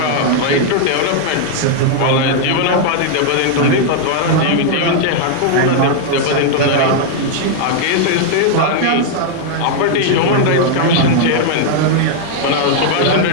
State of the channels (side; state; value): both; different; correlation -0.01